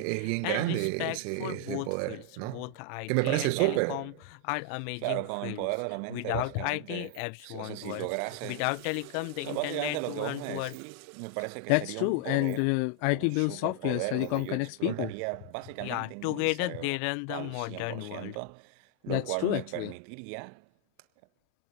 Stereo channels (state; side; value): different; both; correlation 0.00